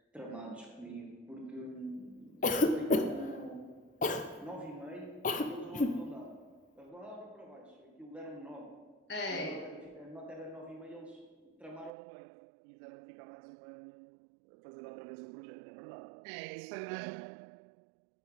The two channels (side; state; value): left; drops out; at 11.9 s